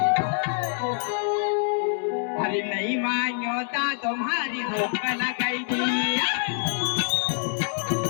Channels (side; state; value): right; silent; digital silence